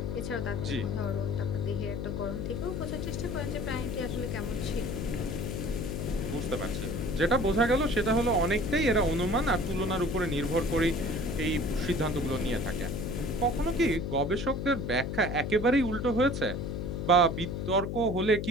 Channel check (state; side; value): noise; left; hum, 3 dB below the sound